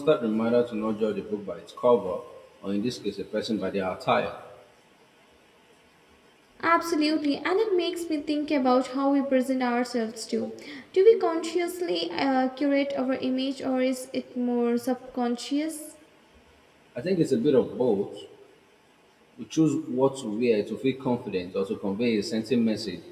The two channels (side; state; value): both; identical; correlation 1.00